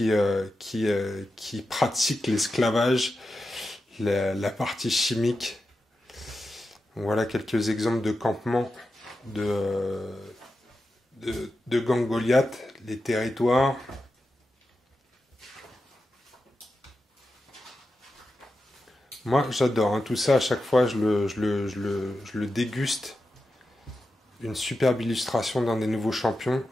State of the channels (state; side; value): normal; both; correlation 0.90